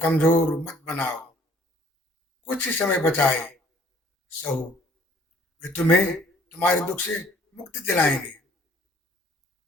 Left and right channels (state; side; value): normal; both; correlation 0.57